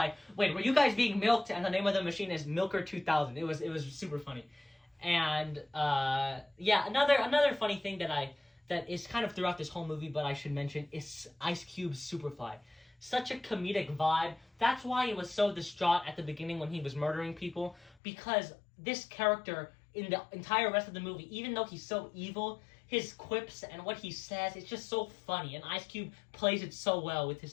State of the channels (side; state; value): right; drops out; at 17.9 s